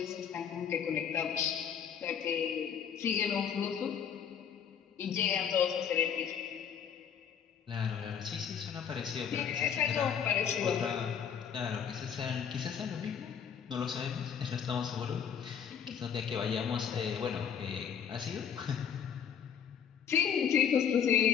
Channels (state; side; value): quieter; right; 7.9 dB